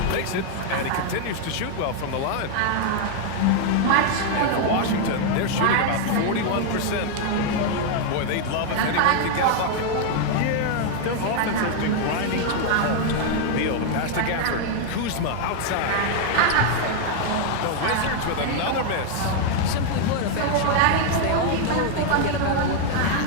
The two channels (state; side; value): different; both; correlation 0.00